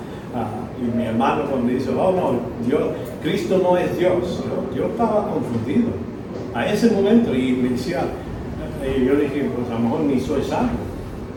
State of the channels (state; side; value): identical; both; correlation 1.00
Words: Y mi hermano cuando dice, Cristo no es Dios, yo estaba confundido a ese momento y me decía, yo dije, pues a lo mejor ni soy salvo.